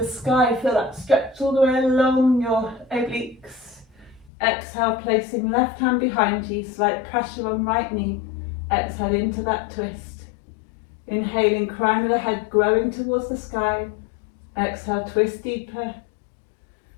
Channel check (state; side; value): drops out; right; at 4.3 s